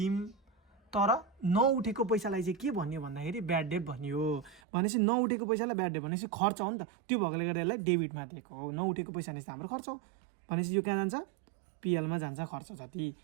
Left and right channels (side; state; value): left; drops out; at 4.6 s